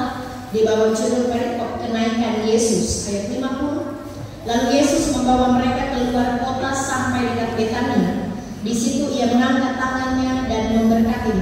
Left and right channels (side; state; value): both; identical; correlation 1.00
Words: di bawah judul perikop kenaikan Yesus, ayat 50. Lalu Yesus membawa mereka keluar kota sampai dekat Betania. Di situ ia mengangkat tangannya dan memberkati